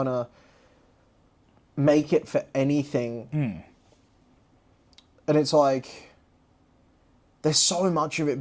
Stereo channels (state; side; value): identical; both; correlation 1.00